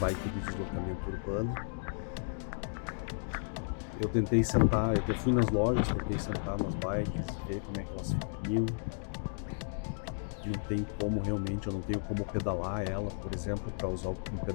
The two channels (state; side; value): silent; right; digital silence